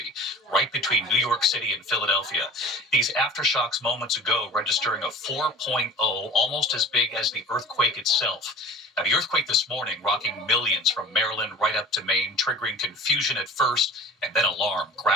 right between New York City and Philadelphia. These aftershocks moments ago registering a 4.0, almost as big as the earthquake itself. Now, the earthquake this morning rocking millions from Maryland right up to Maine, triggering confusion at first and then alarm,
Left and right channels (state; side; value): normal; both; correlation 0.41